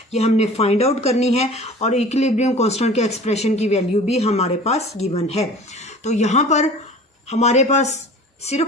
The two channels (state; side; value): normal; both; correlation 0.42